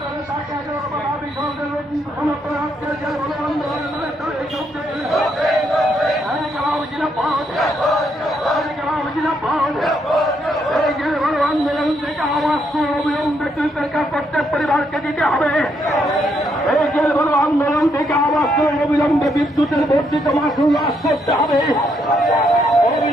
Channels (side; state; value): both; normal; correlation 0.75